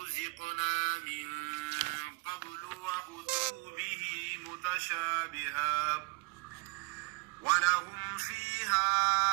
من قبل وأتوا به متشابها ولهم فيها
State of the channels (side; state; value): left; quieter; 28.5 dB